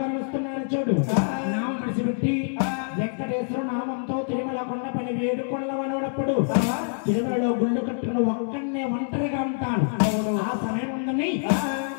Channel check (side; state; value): right; silent; 61 dB below the other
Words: కలుస్తున్నాడు చూడు నామం విడిచిపెట్టి వెంకటేశ్వర నామంతో తిరుమల కొండపని వేడుకొండల వనప్పుడు తిరుమలలో గుళ్ళు కట్టుకుని ఒక్కడనే ఒంటరిగా ఉంటాను ఆ సమయం ఉందని